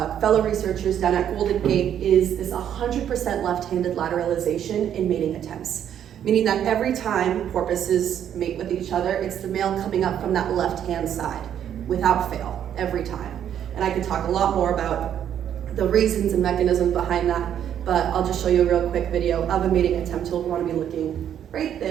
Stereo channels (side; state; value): left; quieter; 9.7 dB